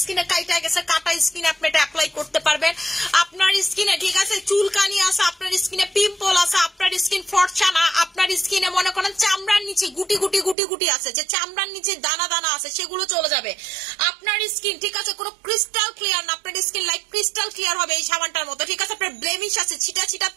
স্কিনে কাইটা গেছে, কাটা স্কিন আপনি এটা অ্যাপ্লাই করতে পারবেন। আপনার স্কিনে, ঠিক আছে, চুলকানি আছে, আপনার স্কিনে পিম্পল আছে, আপনার স্কিন ফর্সা না, আপনার স্কিনে মনে করেন চামড়ার নিচে গুটি গুটি আছে, যে চামড়ার নিচে দানা দানা আছে, সেগুলো চলে যাবে। আপনার স্কিন, ঠিক আছে, কোনো ক্রিস্টাল ক্লিয়ার না, আপনার স্কিন লাইক ক্রিস্টাল ক্লিয়ার হবে এই সাবানটার মতো, ঠিক আছে? আপনার ব্লেমিশ আছে, ছিটা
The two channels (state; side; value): drops out; left; at 10.6 s